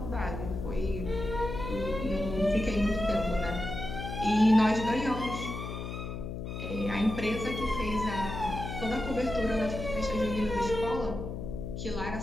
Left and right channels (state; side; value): noise; left; hum, 6 dB below the sound